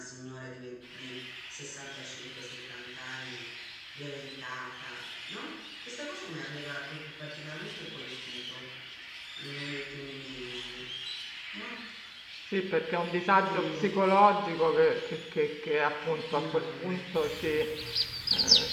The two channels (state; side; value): identical; both; correlation 1.00